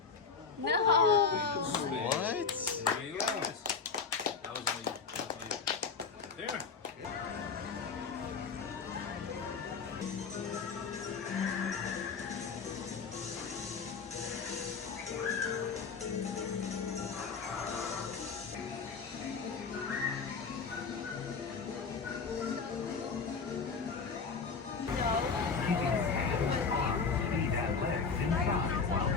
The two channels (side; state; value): right; quieter; 5.3 dB